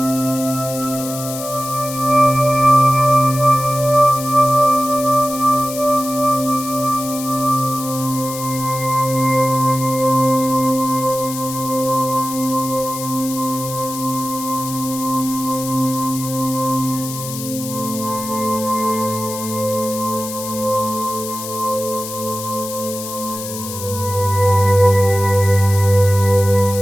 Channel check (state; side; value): noise; left; hiss, 9 dB below the sound